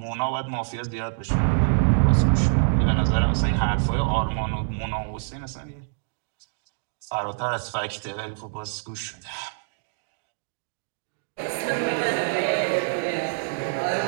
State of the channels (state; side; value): silent; left; digital silence